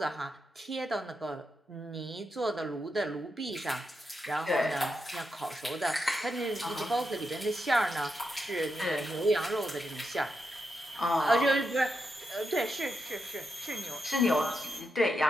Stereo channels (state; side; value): normal; both; correlation 0.85